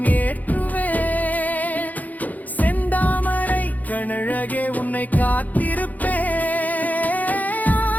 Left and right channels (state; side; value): late; right; 0.080 ms